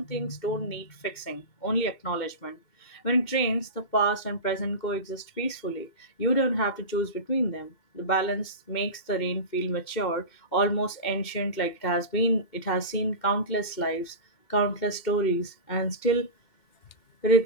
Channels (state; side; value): late; right; 2.7 ms